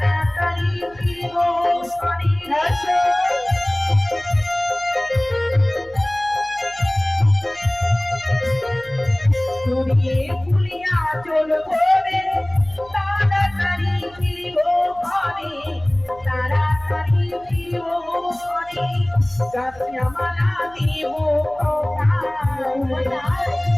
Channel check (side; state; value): right; noise; hum, 23 dB below the sound